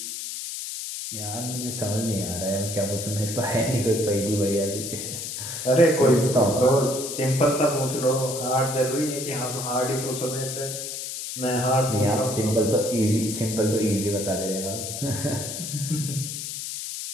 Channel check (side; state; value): left; noise; hiss, 6 dB below the sound